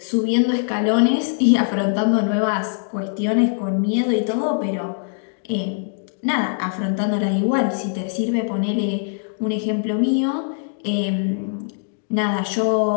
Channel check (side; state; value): right; silent; digital silence